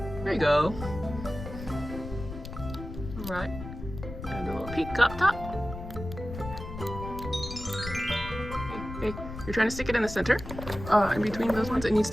There you go. Alright. And a little pink up top. Okay, you're trying to stick it in the center. In between those ones, it needs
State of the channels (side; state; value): left; noise; rumble, 10 dB below the sound